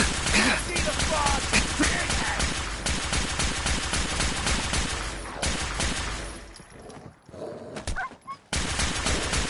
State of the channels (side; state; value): both; identical; correlation 1.00